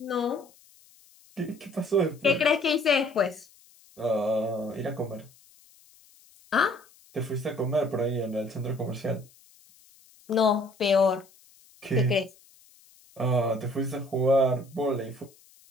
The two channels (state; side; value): noise; left; hiss, 28 dB below the sound